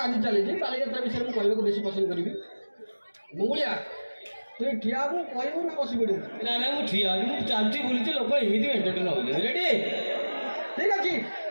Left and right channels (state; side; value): inverted; both; correlation -1.00